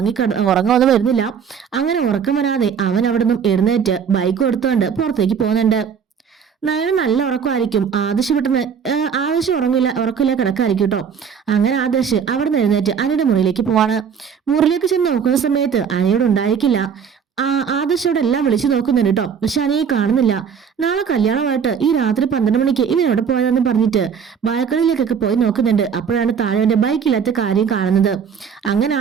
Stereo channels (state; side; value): quieter; left; 7.2 dB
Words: വരുന്നില്ല. അങ്ങനെ ഉറക്കം വരാതെ അവൻ അവിടെ നിന്നും എഴുന്നേറ്റ് ബൈക്ക് എടുത്തുകൊണ്ട് പുറത്തേക്ക് പോകുന്നുണ്ട്. നയന നല്ല ഉറക്കമായിരിക്കും. ആദർശ് ഉറക്കില്ല കിടക്കായിരിക്കും കേട്ടോ. അങ്ങനെ ആദർശ് അവിടെ നിന്ന് എഴുന്നേറ്റ് അനിയുടെ മുറിയിലേക്ക് പോവാണ്. മുറിയിലേക്ക് ചെന്ന് നോക്കുന്ന സമയത്ത് അനിയോട് ഉണ്ടായിരിക്കില്ല. ആദർശോടെ എല്ലാം വിളിച്ചു നോക്കുന്നുണ്ട് കേട്ടോ. പക്ഷെ അനിയെ കാണുന്നില്ല. നാളെ കല്യാണമായിട്ട് ഈ രാത്രി 12 മണിക്ക് ഇവൻ എവിടെ പോയതെന്ന് പറഞ്ഞിട്ട് ബാൽക്കണിയിലേക്കൊക്കെ പോയി നോക്കുന്നുണ്ട്. അപ്പോഴാണ് താഴെ ബൈക്കില്ലാത്ത കാര്യം കാണുന്നത്. അങ്ങനെ